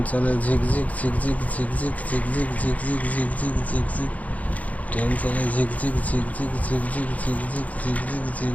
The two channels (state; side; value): late; right; 0.071 ms